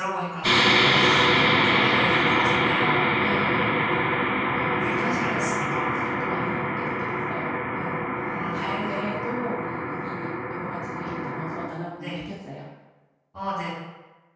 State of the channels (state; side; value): identical; both; correlation 1.00